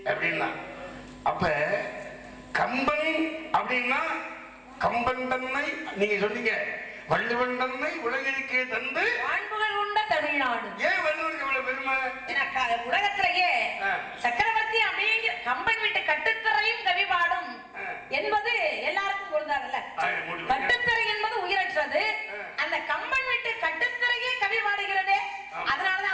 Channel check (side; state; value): both; identical; correlation 1.00